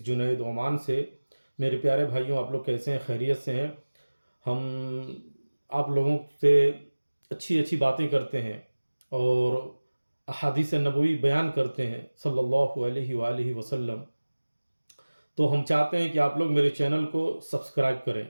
जुनैद ओमान से। मेरे प्यारे भाइयों, आप लोग कैसे हैं? खैरियत से हैं? हम आप लोगों से अच्छी अच्छी बातें करते हैं और अहादीस नबवी बयान करते हैं सल्लल्लाहु अलैहि वसल्लम। तो हम चाहते हैं कि आप लोग मेरे चैनल को सब्सक्राइब करें,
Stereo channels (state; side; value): inverted; both; correlation -1.00